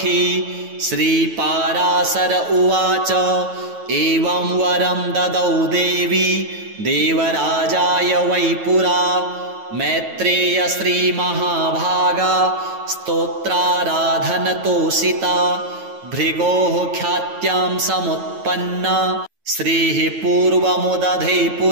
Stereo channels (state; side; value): late; left; 9.2 ms